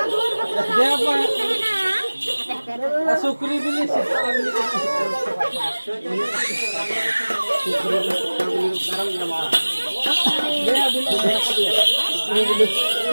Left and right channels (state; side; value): inverted; both; correlation -1.00